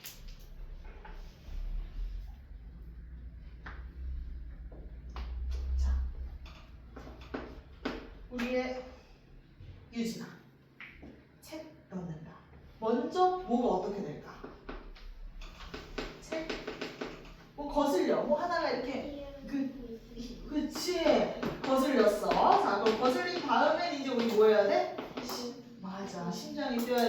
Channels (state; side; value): identical; both; correlation 1.00